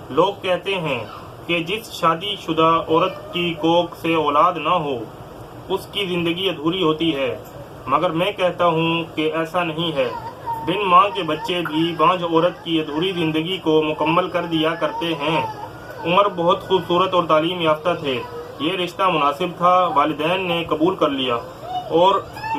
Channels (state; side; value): identical; both; correlation 1.00